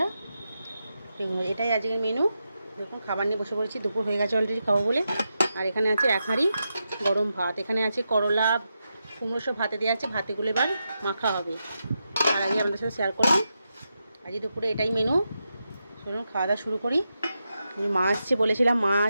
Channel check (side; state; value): both; inverted; correlation -0.87